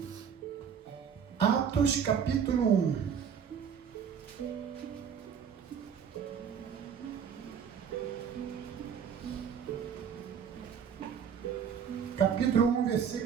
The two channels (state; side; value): quieter; left; 7.5 dB